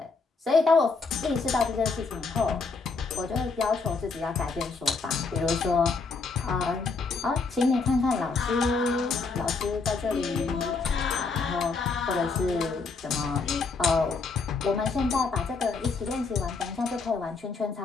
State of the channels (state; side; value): quieter; right; 4.4 dB